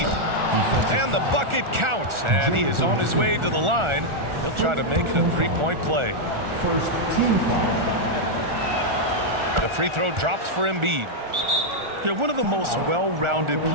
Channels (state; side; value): late; left; 1.4 ms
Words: And the bucket counts. And he is on his way to the line. He'll try to make it a three-point play. First team foul. The free throw drops for Embiid. Yeah, one of the most well-rounded